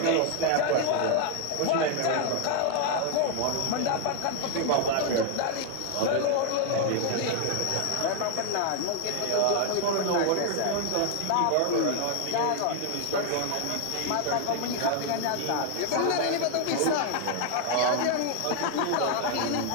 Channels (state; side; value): different; both; correlation 0.00